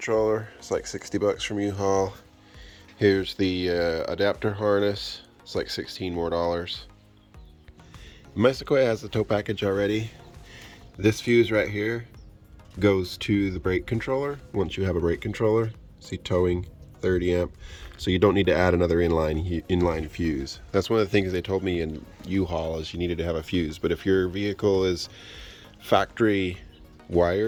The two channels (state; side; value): identical; both; correlation 1.00